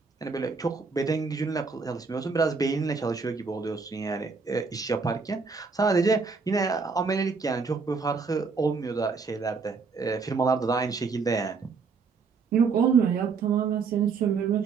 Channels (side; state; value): left; quieter; 4.9 dB